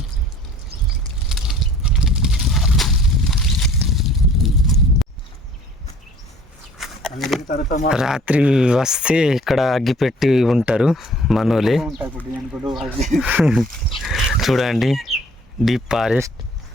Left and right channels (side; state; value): both; normal; correlation 0.54